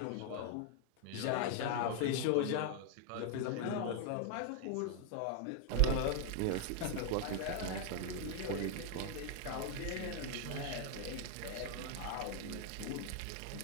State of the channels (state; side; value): different; both; correlation 0.00